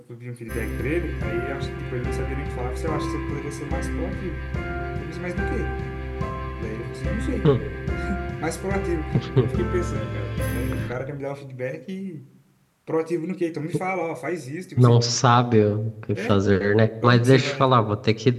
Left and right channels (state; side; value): identical; both; correlation 1.00